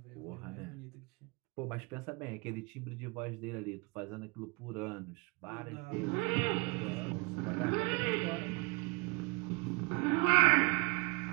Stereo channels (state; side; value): quieter; left; 29.5 dB